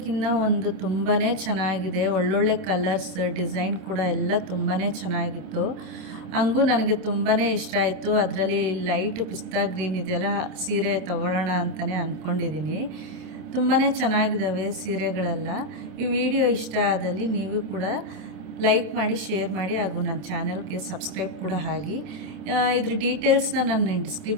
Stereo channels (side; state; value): left; late; 27 ms